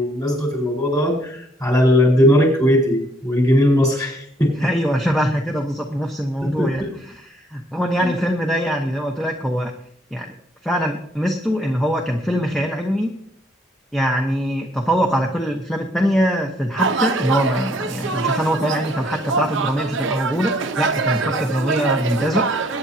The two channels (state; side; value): normal; both; correlation 0.65